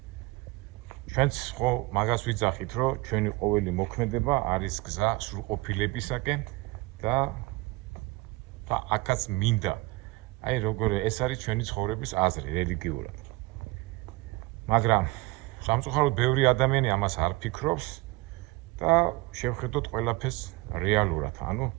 ჩვენც ხო მაგას ვიძახით, რომ ჩვენი ყოველი მოქმედება არის გზა სრულყოფილებისაკენ და აქაც მინდა. აი როგორ ეს არის ჩვენი ცხოვრების აზრი რელიგიურად. მაგრამ სამწუხაროდ ბევრი ადამიანი ამას არ ფიქრობს და შევხედოთ ყველაფერს რეალურად, ანუ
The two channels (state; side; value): quieter; left; 21.8 dB